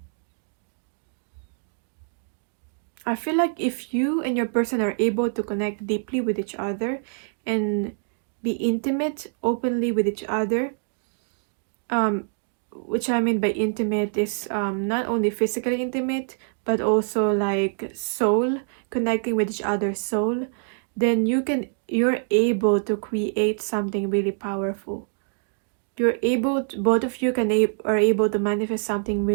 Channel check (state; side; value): silent; left; digital silence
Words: I feel like if you and your person are able to connect deeply with each other and be intimate openly with each other, which I mean by intimate is not only physically intimate, but also like soul, connecting with each other's soul, then you're able to create something really powerful. Both of you are able to manifest something